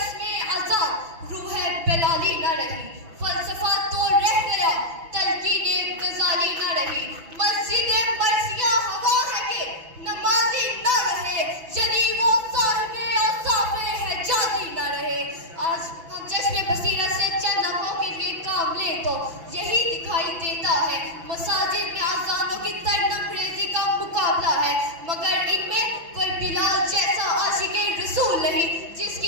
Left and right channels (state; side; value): late; left; 6.0 ms